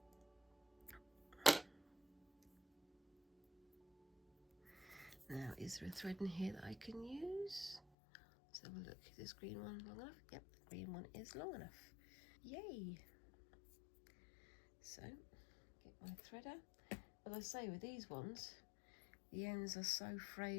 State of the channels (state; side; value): drops out; right; at 7.8 s